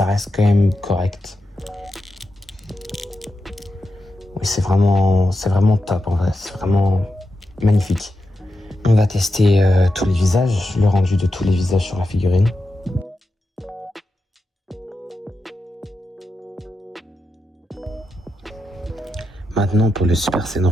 reste quand même correct. Oui, c'est vraiment top en vrai, c'est vraiment magnifique. On va tester tous les visages, le rendu de tous les visages sur la figurine. Maintenant pour le Super Saiyan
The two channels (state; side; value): normal; both; correlation 0.88